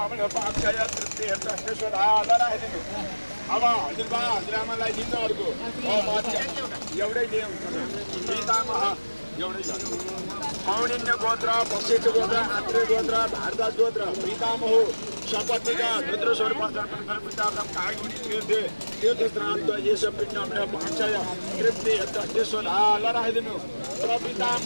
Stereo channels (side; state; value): both; inverted; correlation -1.00